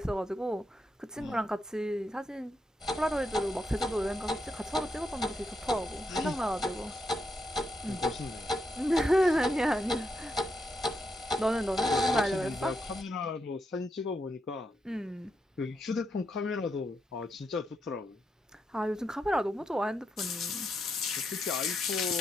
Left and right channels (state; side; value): normal; both; correlation 0.82